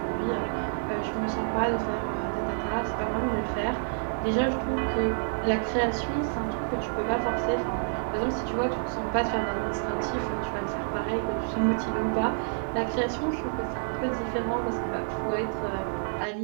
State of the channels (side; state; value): left; silent; 59 dB below the other